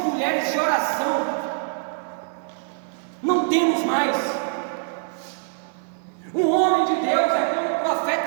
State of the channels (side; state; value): left; silent; 63 dB below the other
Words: de oração. mais. Um homem de Deus é como o